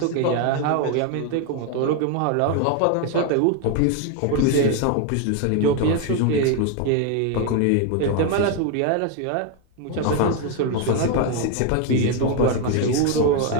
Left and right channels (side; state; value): both; different; correlation 0.01